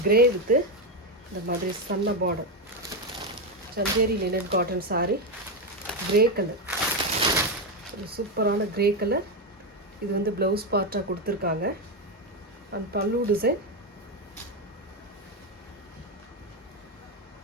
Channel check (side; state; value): both; normal; correlation 0.09